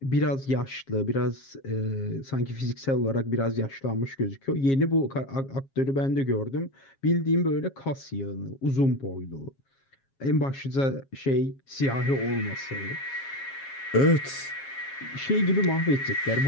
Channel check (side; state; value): right; late; 7.4 ms